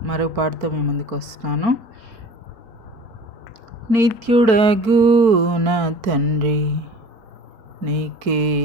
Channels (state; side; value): late; left; 4.5 ms